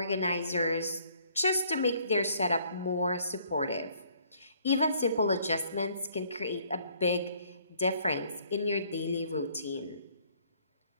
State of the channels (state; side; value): inverted; both; correlation -0.62